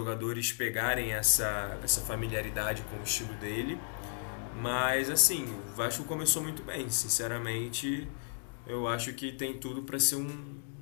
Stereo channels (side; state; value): right; silent; digital silence